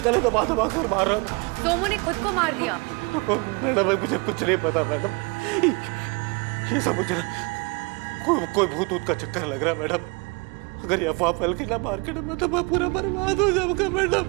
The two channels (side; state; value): left; quieter; 29.2 dB